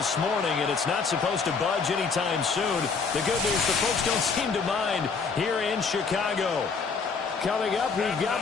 morning, and it's not supposed to budge anytime soon. The good news, the folks don't seem to mind here in Chicago. Coming up, we've got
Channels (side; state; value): right; quieter; 5.1 dB